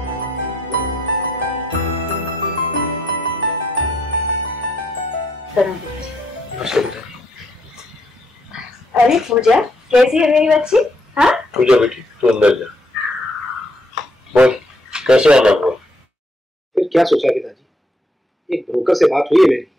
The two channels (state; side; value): normal; both; correlation 0.73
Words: अरे पूजा, कैसी है मेरी बच्ची? हाँ पूजा बेटी तू अंदर जा। बोल कैसे आना हुआ? फिर क्या सोचा पिताजी, एक ब्रोकर से बात हुई है मेरी,